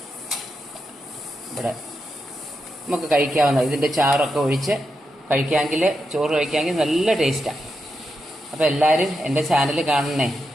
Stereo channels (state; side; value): normal; both; correlation 0.86